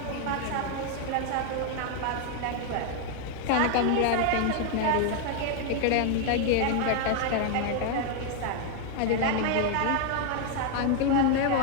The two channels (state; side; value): different; both; correlation 0.00